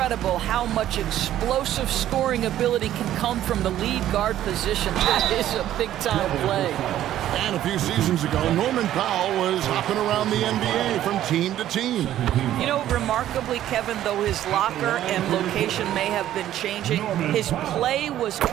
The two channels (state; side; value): quieter; left; 12.4 dB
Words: how much explosive scoring ability can come from the lead guard position. That is a big-time play. And a few seasons ago, Norman Powell was hopping around the NBA from team to team. You know, remarkably, Kevin, though his locker and location may have been changing, his play was